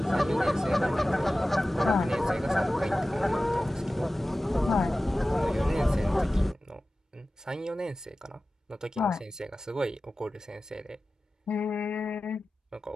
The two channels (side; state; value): both; normal; correlation 0.95